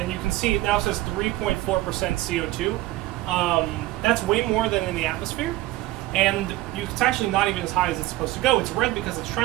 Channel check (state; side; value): quieter; left; 17.3 dB